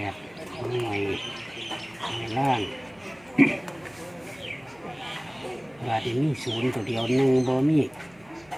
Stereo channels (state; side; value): noise; right; hum, 28 dB below the sound